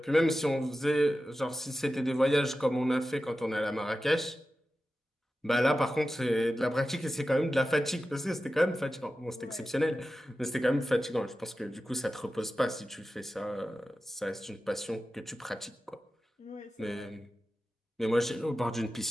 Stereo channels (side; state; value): both; normal; correlation 0.93